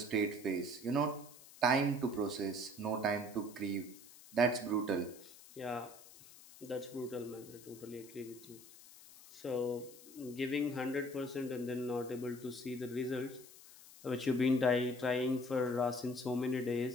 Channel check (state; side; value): noise; left; hiss, 19 dB below the sound